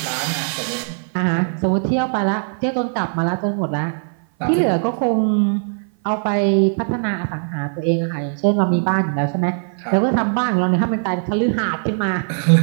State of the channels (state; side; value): silent; left; 57 dB below the other